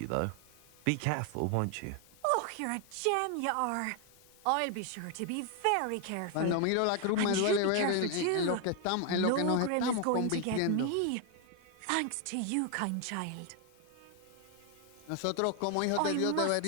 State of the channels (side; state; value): both; different; correlation 0.00